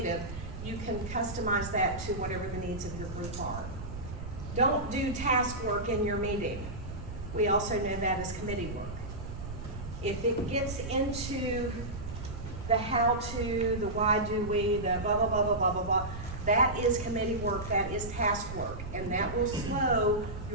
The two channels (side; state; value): right; noise; rumble, 9 dB below the sound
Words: You can customize that to whatever the needs of your group are. Don't do task work in your meeting. We also know that as committee work. If it gets into the how-to, the why do we, the blah, blah, blah, blah, blah, blah, blah, that is committee work, that is task work, and that will slow